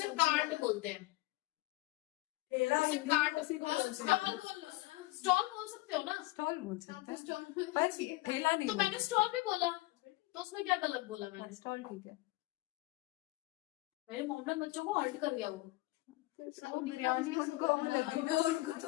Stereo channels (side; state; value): right; quieter; 19.6 dB